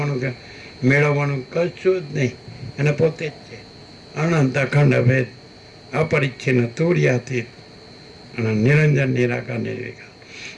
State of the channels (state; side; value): identical; both; correlation 1.00